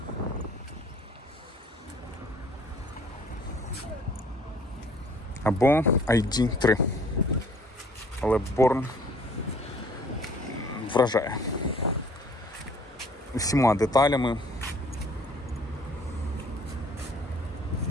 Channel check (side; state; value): both; normal; correlation 0.55